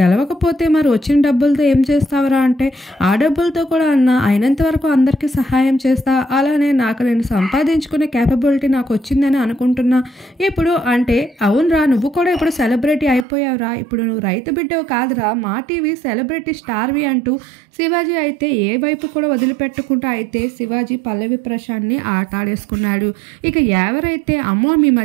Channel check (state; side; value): drops out; left; at 13.2 s